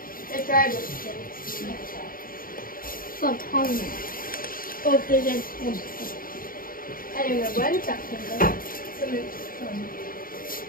don't know where it's at.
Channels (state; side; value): late; right; 0.41 ms